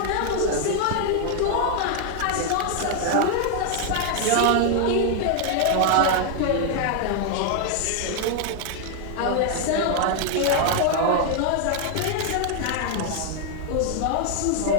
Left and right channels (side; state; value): both; different; correlation 0.00